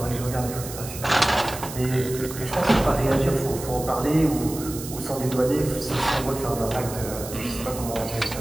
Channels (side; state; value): right; noise; hiss, 11 dB below the sound